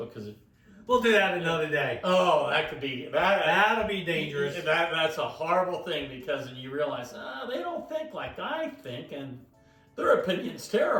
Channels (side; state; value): both; identical; correlation 1.00